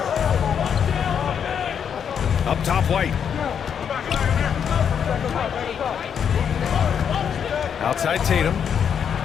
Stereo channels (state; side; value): quieter; right; 7.8 dB